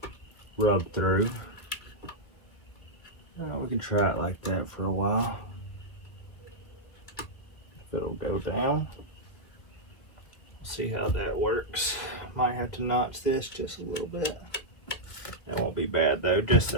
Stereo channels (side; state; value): right; late; 2.0 ms